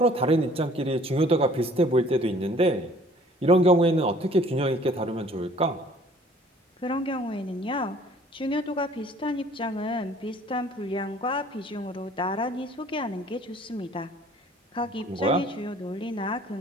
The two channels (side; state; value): both; normal; correlation 0.55